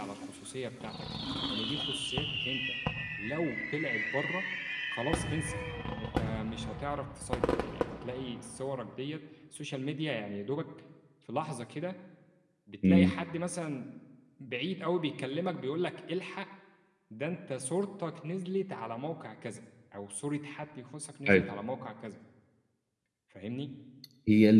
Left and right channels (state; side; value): identical; both; correlation 1.00